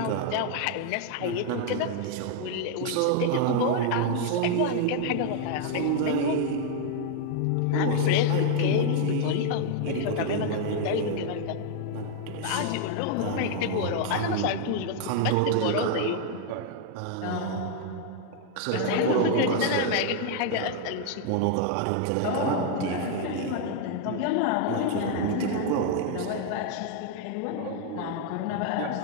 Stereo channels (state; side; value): different; both; correlation 0.00